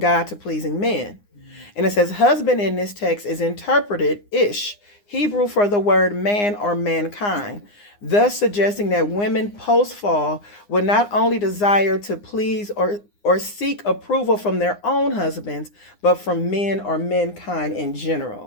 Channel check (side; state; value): right; late; 9.8 ms